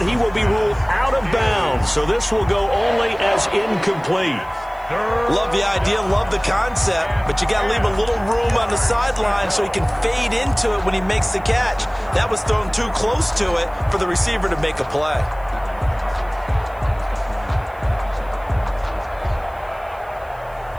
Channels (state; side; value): noise; right; hiss, 29 dB below the sound